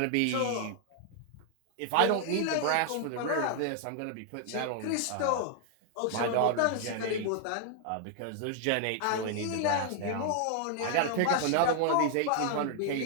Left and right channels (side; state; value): both; different; correlation 0.00